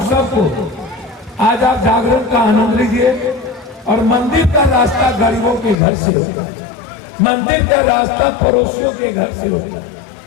सबको आज आप जागरण का आनंद लीजिए। और मंदिर का रास्ता गरीबों के घर से होता है, मंदिर का रास्ता पड़ोसियों के घर से होता है,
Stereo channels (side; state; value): right; drops out; at 5.8 s